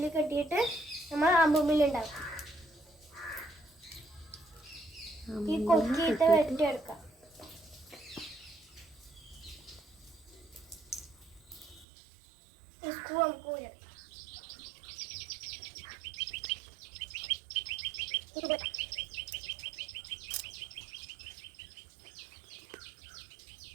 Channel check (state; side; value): drops out; left; at 11.9 s